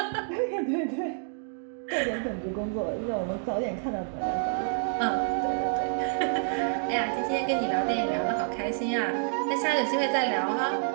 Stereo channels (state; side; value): silent; left; digital silence